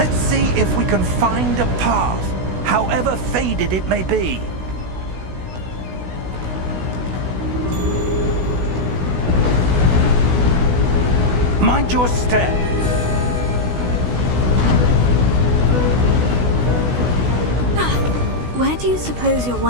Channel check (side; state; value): left; late; 16 ms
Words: see if we can find a path, however faded it may be. Mind your step. Where do you suppose your